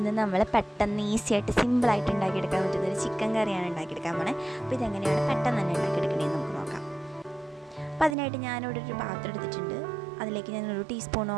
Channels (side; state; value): left; drops out; at 8.2 s